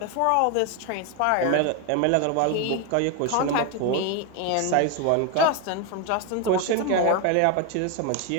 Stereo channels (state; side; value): different; both; correlation 0.01